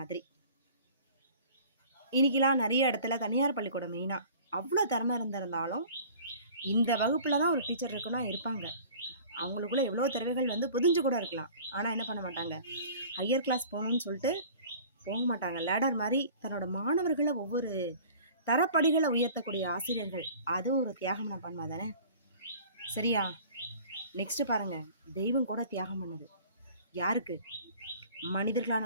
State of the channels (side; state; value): both; inverted; correlation -0.46